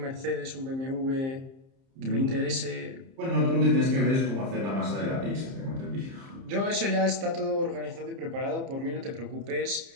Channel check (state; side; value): late; left; 30 ms